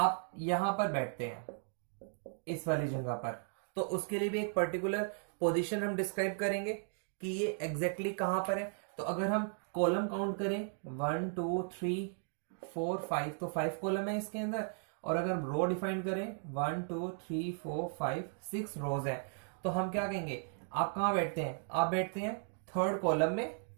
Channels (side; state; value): left; silent; 54 dB below the other